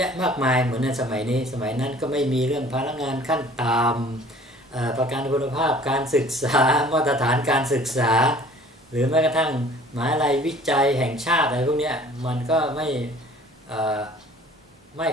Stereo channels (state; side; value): normal; both; correlation 0.51